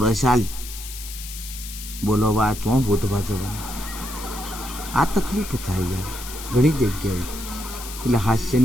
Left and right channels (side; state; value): left; noise; hiss, 11 dB below the sound